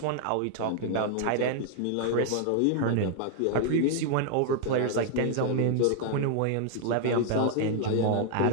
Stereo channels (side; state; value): both; different; correlation 0.00